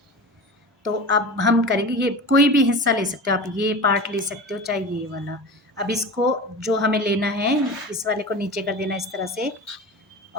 तो अब हम करेंगे, ये कोई भी हिस्सा ले सकते हो आप, ये पार्ट ले सकते हो चाहे ये वाला। अब इसको जो हमें लेना है, इस वाले को नीचे कर देना इस तरह से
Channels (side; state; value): both; normal; correlation 0.32